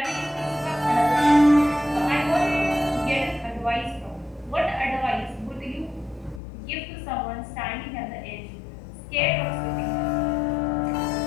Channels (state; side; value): drops out; right; at 6.4 s